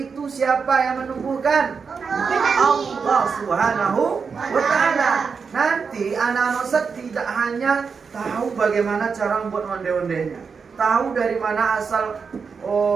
itu siapa yang menumbuhkan? Allah Subhanahu wa ta'ala. Nanti anak-anak Ustaz tidak hanya tahu bagaimana cara membuat onde-ondenya, tahu dari mana asal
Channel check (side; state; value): left; quieter; 5.6 dB